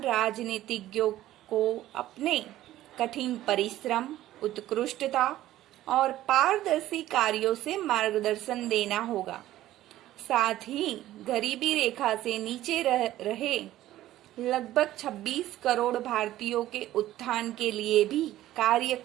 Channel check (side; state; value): left; quieter; 14.3 dB